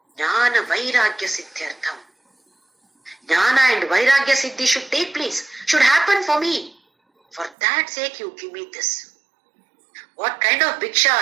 Jnana Vairagya Siddhyartham. Jnana and Vairagya Siddhi should take place, should happen for me. For that sake you give me this. What kind of bhiksha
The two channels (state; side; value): drops out; left; at 7.6 s